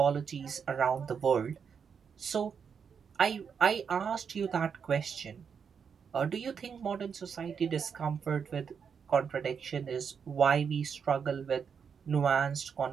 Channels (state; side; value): quieter; left; 6.7 dB